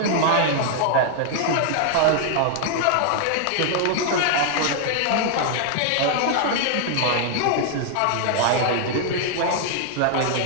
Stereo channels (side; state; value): both; different; correlation 0.00